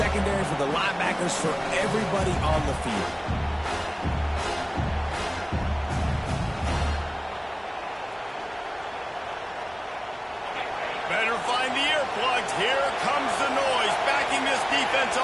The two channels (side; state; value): both; identical; correlation 1.00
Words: for the linebackers, for everybody on the field. Better find the earplugs. Here comes the noise, backing this defense